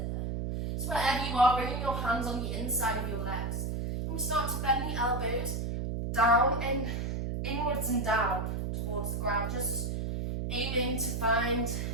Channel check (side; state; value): right; noise; hum, 2 dB below the sound